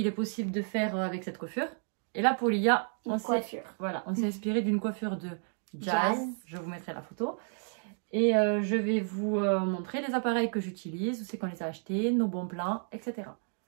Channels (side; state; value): left; silent; 57 dB below the other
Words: est possible de faire avec cette coiffure. Et là pour Lia, on s'est inspiré d'une coiffure de Jazz. Je vous mettrai la photo. Et je vais vous montrer les appareils que j'utilise, où c'est qu'on les a achetés, nos bons plans, etc.